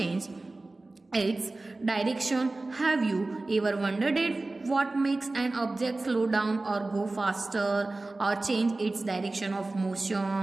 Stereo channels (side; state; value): left; quieter; 3.1 dB